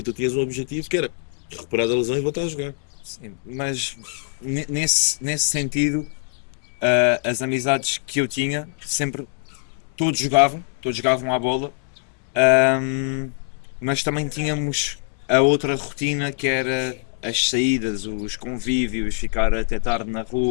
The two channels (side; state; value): right; silent; digital silence